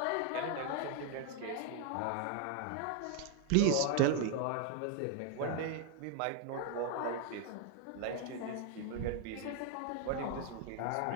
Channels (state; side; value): different; both; correlation 0.00